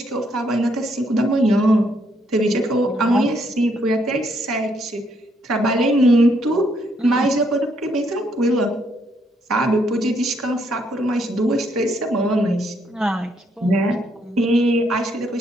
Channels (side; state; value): both; normal; correlation 0.72